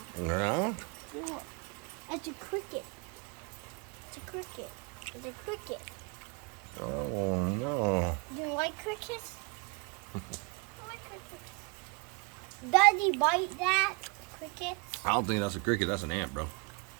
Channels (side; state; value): left; quieter; 30.5 dB